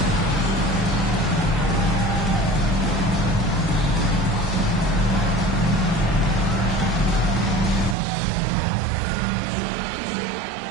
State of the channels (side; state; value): left; drops out; at 8.0 s